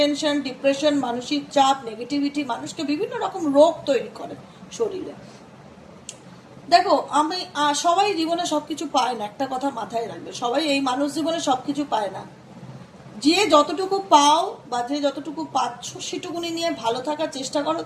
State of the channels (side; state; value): both; identical; correlation 1.00